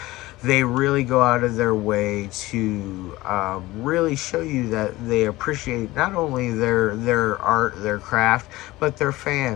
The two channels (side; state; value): right; quieter; 18.6 dB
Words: they really go out of their way to really show you that they appreciate not only their art, their craft, but their